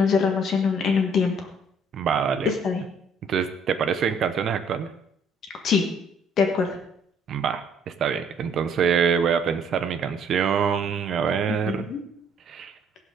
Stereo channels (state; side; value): normal; both; correlation 0.62